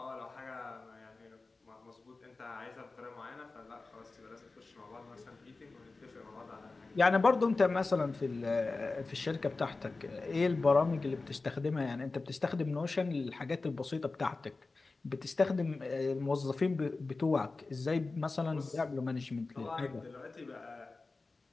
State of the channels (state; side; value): quieter; right; 3.7 dB